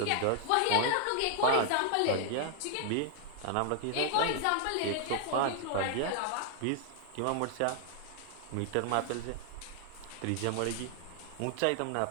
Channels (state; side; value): different; both; correlation 0.00